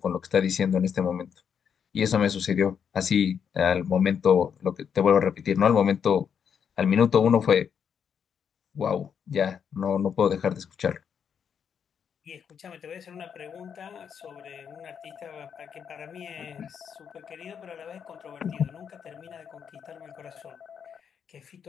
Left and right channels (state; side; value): quieter; right; 7.5 dB